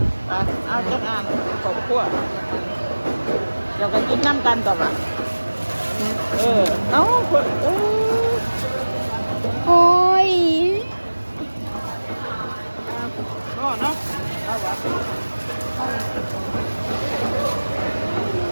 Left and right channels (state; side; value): inverted; both; correlation -1.00